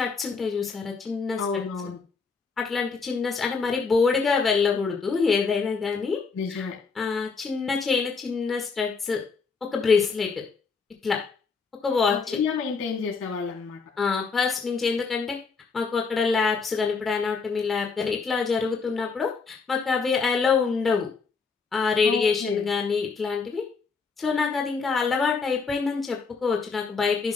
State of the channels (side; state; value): right; quieter; 4.9 dB